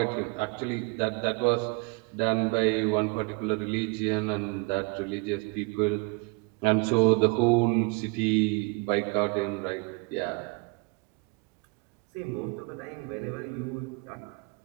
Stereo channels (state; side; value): quieter; left; 29.8 dB